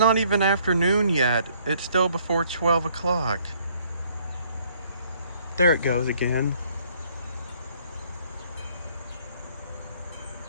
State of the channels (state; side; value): inverted; both; correlation -0.64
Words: even afternoon yet. It's still before 12 o'clock. There it goes again.